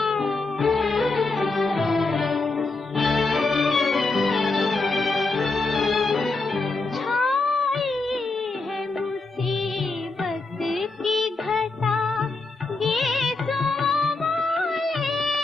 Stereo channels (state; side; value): quieter; right; 3.6 dB